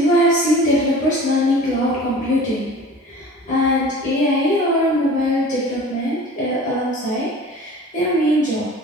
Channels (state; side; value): normal; both; correlation 0.42